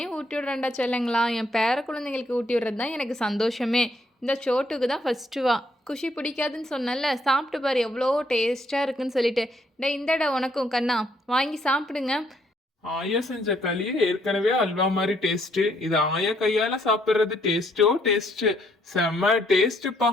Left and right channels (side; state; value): both; normal; correlation 0.70